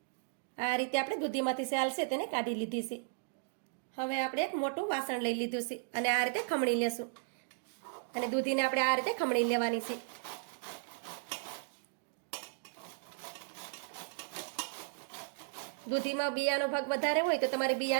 આ રીતે આપણે દૂધીમાંથી સેલ છે તેને કાઢી લીધી છે. હવે આપણે એક મોટું વાસણ લઈ લીધું છે અને આ રીતે ખમણી લેશું. અને દૂધીને આપણે આ રીતે ખમણી લેવાની છે. દૂધીમાં બિયાનો ભાગ વધારે હોય તો તમારે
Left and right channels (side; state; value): left; silent; digital silence